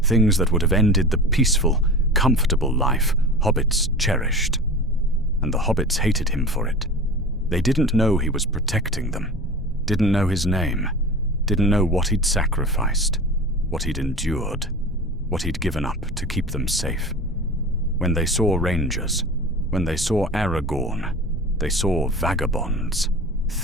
Things that would have ended the peaceful, comfortable life hobbits cherished. And the hobbits hated him for it. They didn't know he was protecting them. Didn't know his name. Didn't know what he'd sacrificed. What he'd endured. What he'd given up to keep them safe. When they saw rangers, when they saw Aragorn, they saw vagabonds,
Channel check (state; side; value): normal; both; correlation 0.34